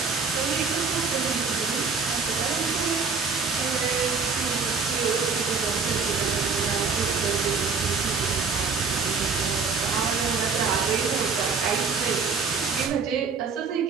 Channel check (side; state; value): left; quieter; 5.0 dB